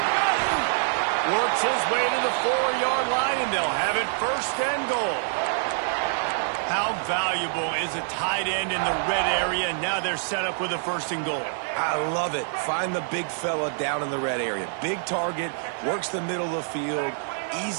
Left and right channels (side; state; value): left; silent; 56 dB below the other